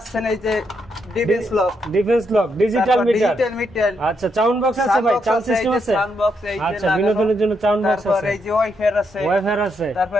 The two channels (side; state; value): both; normal; correlation 0.79